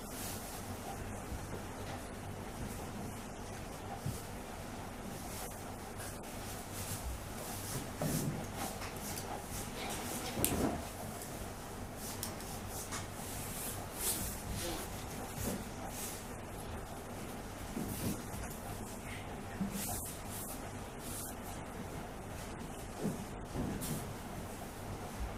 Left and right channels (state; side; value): identical; both; correlation 1.00